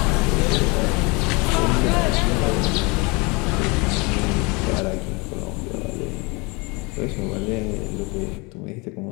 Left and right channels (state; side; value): quieter; right; 27.6 dB